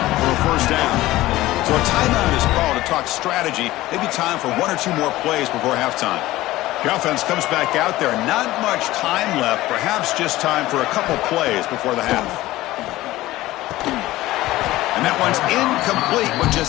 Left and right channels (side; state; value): right; quieter; 17.0 dB